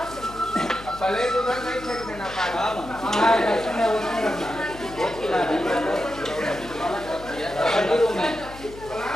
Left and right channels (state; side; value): noise; left; hum, 16 dB below the sound